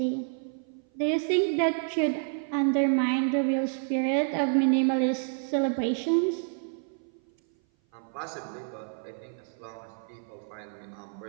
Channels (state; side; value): silent; left; 56 dB below the other